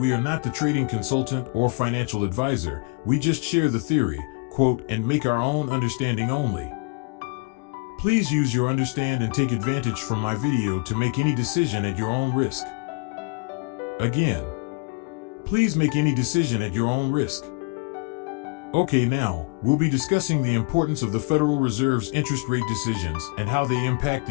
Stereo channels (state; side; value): quieter; right; 31.3 dB